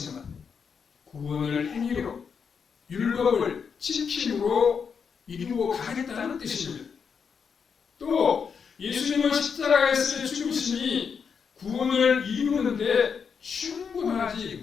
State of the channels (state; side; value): quieter; right; 6.3 dB